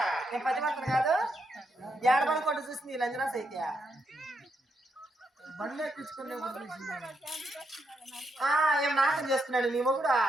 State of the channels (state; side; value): normal; both; correlation 0.80